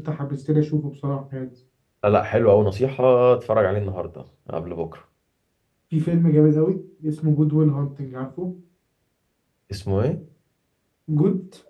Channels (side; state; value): both; identical; correlation 1.00